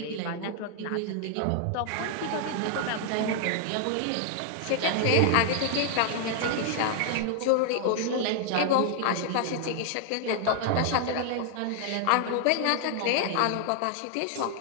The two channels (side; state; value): both; different; correlation -0.01